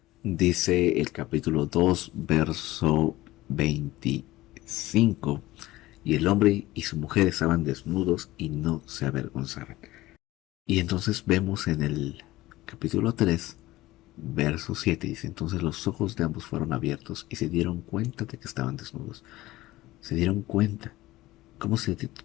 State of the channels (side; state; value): right; quieter; 17.6 dB